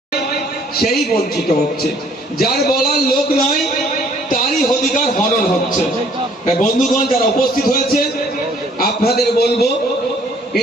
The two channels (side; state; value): both; normal; correlation 0.60